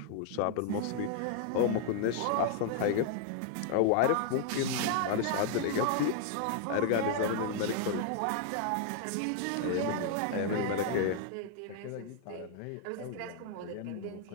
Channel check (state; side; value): different; both; correlation 0.00